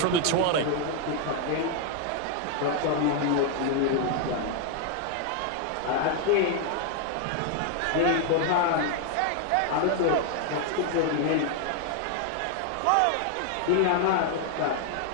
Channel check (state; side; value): different; both; correlation 0.00